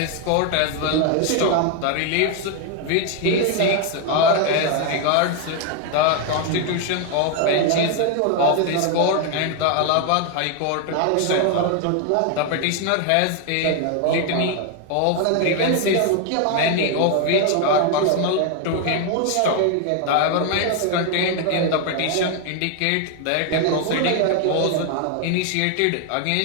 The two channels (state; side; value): different; both; correlation 0.01